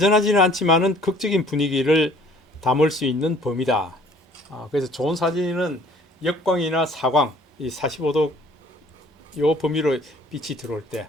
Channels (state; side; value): normal; both; correlation 0.55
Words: 않지만은 극적인 분위기를 담을 수 있는 범위다. 그래서 좋은 사진은 역광이나 사광 이 45도 요 범위로 빛이 들어올 때,